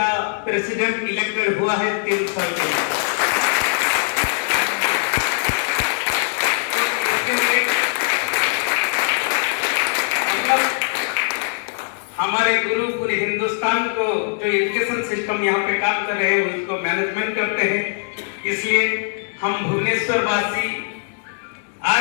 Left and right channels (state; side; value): silent; right; digital silence